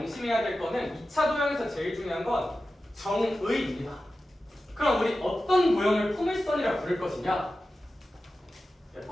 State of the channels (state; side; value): normal; both; correlation 0.94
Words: 될 거는 2차 도형에서 제일 중요한 건 정의입니다. 그럼 우리 어떤 도형을 포물선이라 부를 것이냐?